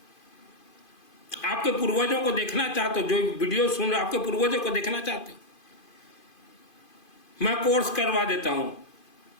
आपके पूर्वजों को देखना चाहते हो, जो वीडियो सुन रहे आपके पूर्वजों को देखना चाहते हो, मैं कोर्स करवा देता हूं,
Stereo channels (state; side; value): late; right; 2.5 ms